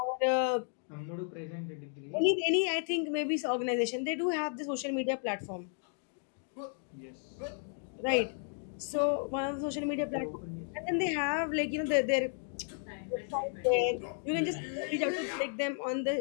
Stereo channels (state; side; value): silent; right; 55 dB below the other